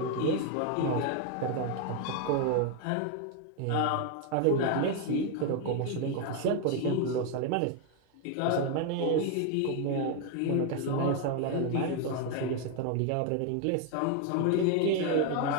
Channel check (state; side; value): different; both; correlation 0.01